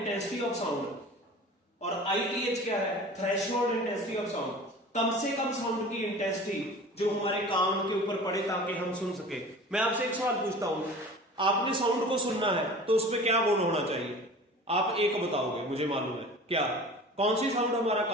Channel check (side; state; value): both; normal; correlation 0.40